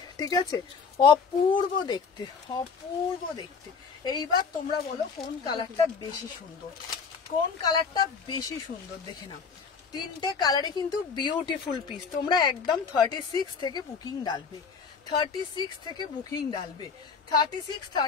ঠিক আছে, অপূর্ব দেখতে, অপূর্ব দেখতে। এইবার তোমরা বলো কোন কালারটা বেশি সুন্দর, কোন কালারটা বেশি সুন্দর দেখে নাও। তিনটে কালারে কিন্তু বিউটিফুল পিস। তোমরা একদম 36 থেকে বুকিং ডালবে, 36 থেকে বুকিং ডালবে, 36,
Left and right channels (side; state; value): right; quieter; 5.5 dB